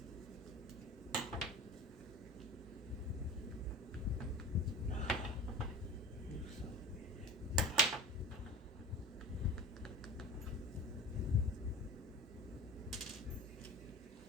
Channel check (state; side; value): normal; both; correlation 0.36